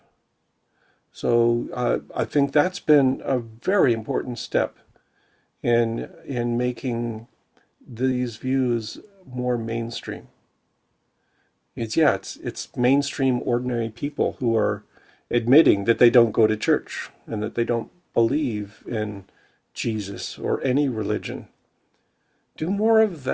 So I think that's been a very important step in making these views more mainstream. It's mainstream ordinary people who are admitting that they don't go to church and that they don't believe in Jesus or any religion. Do more of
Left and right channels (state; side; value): identical; both; correlation 1.00